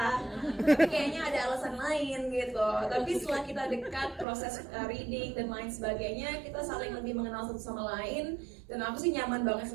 Tapi kayaknya ada alasan lain gitu. Tapi setelah kita dekat, proses reading dan lain sebagainya, kita saling lebih mengenal satu sama lain. Dan aku sih nyaman banget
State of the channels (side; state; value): left; drops out; at 4.2 s